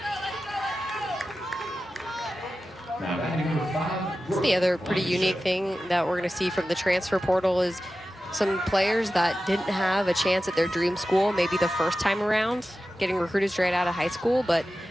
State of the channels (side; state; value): both; normal; correlation 0.94